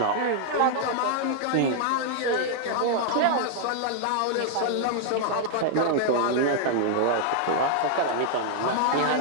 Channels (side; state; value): both; different; correlation -0.01